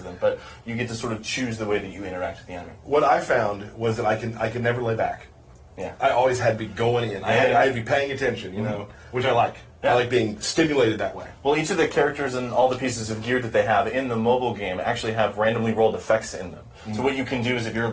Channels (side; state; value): both; identical; correlation 1.00